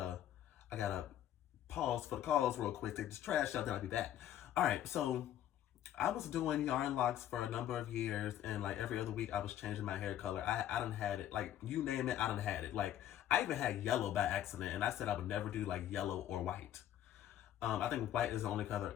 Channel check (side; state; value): right; quieter; 11.6 dB